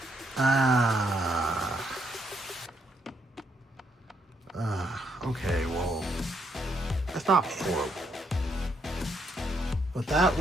Okay, well, that's not horrible. But that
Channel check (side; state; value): both; normal; correlation 0.75